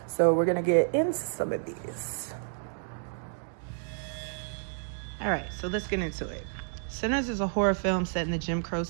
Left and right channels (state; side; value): silent; left; digital silence